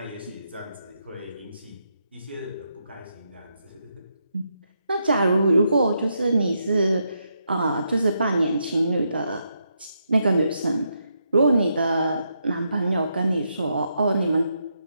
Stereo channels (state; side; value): inverted; both; correlation -0.81